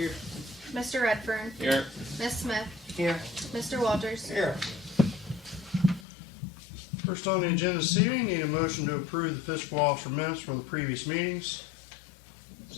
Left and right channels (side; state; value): right; drops out; at 6.1 s